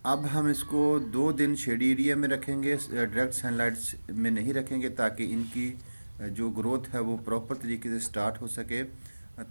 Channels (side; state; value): both; inverted; correlation -1.00